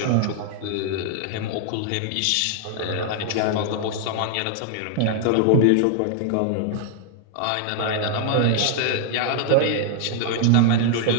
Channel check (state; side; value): different; both; correlation 0.00